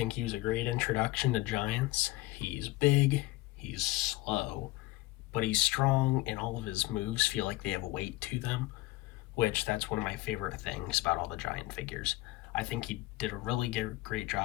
he was a great introduction to giants. He's big, he's slow, but he's strong, and all of his moves feel like they have a weight to them, which that's one of my favorite things about all the giant figures. I think he did a really great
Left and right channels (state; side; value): quieter; right; 19.1 dB